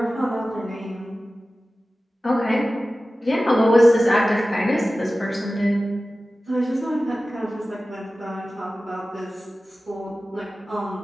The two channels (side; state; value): both; normal; correlation 0.96